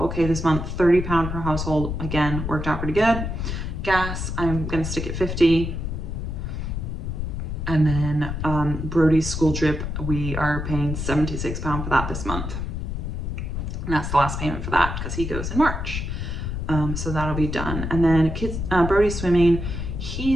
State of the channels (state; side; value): noise; left; rumble, 4 dB below the sound